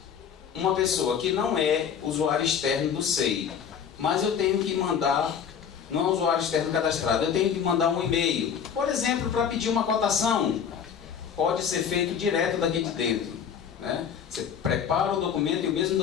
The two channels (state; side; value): quieter; right; 7.7 dB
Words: uma pessoa que não é usuário externo do SEI, mas eu tenho que mandar, não é usuário externo cadastrado, eu tenho que mandar um e-mail, por exemplo, para pedir uma cotação, pode ser feito direto daqui de dentro, né? Você prepara o documento e o mesmo